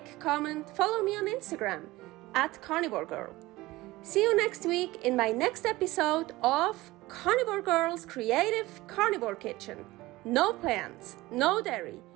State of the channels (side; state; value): left; quieter; 19.1 dB